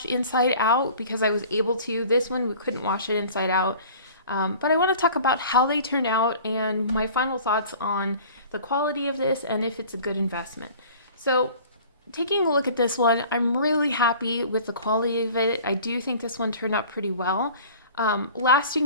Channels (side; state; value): both; inverted; correlation -0.46